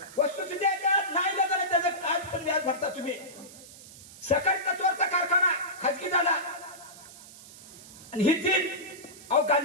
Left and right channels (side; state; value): right; noise; hiss, 18 dB below the sound